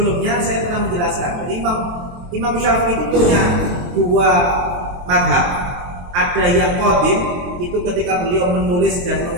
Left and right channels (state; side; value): late; left; 23 ms